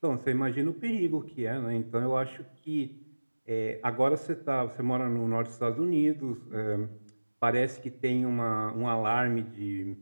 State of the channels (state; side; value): inverted; both; correlation -1.00